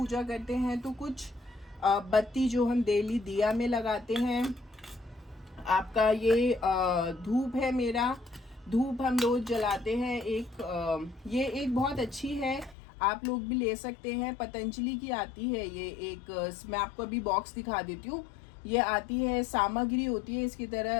करते हैं। तो कुछ बत्ती जो हम डेली दिया में लगाते हैं, आपका ये धूप है, मेरा धूप हम रोज़ जलाते हैं। ये एक बहुत अच्छी है, आप लोग भी ले सकते हैं, पतंजलि की आती है ये एक। मैं आपको अभी बॉक्स दिखा देती हूँ। ये आती है, सामग्री होती है इसकी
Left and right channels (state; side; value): drops out; right; at 12.8 s